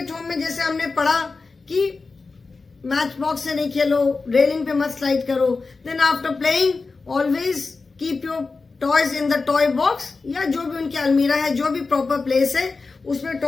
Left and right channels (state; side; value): quieter; right; 4.1 dB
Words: home में जैसे हमने पढ़ा कि मैच बॉक्स से नहीं खेलो, रेलिंग पे मत स्लाइड करो. Then after playing always keep your toys in the toy box, या जो भी उनकी अलमीरा है, जो भी प्रॉपर प्लेस है उसमें